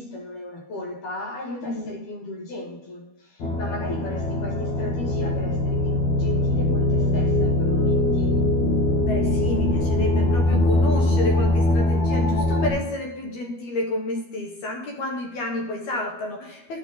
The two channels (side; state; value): right; late; 12 ms